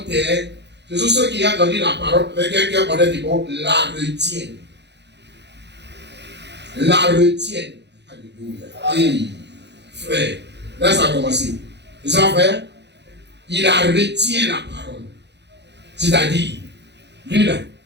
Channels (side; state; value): left; late; 0.50 ms